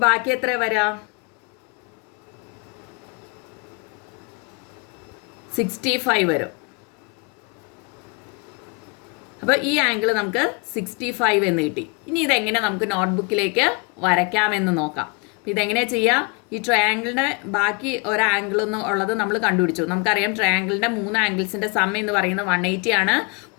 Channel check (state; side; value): quieter; right; 31.5 dB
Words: ബാക്കി എത്ര വരാം? 65 വരും. അപ്പോൾ ഈ ആംഗിൾ നമുക്ക് 65 എന്ന് കിട്ടി. ഇനി ഇതെങ്ങനെ നമുക്ക് നോട്ട്ബുക്കിലേക്ക് വരയ്ക്കാമെന്ന് നോക്കാം. അപ്പോൾ ഇതെങ്ങനെയാണ് ചെയ്യുക? ഈ ട്രയാങ്കിളിൻ്റെ ബാക്കി ഒരു ആംഗിൾ എന്ന് ഉള്ളത് നമ്മൾ കണ്ടുപിടിച്ചു. നമുക്കറിയാം ട്രയാങ്കിളിൻ്റെ 3 ആംഗിൾസിൻ്റെ സം എന്ന് പറയുന്നത് 180 ആണ്.